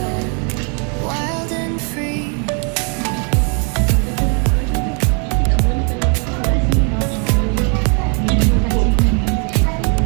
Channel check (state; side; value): quieter; left; 38.6 dB